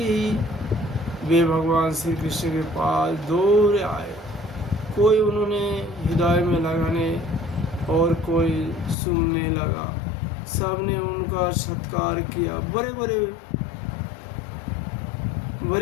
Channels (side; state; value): right; drops out; at 9.0 s